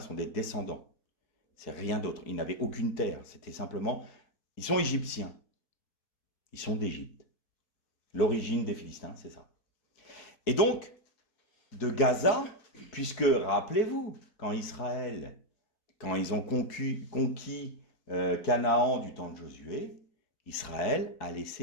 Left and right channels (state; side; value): late; right; 4.6 ms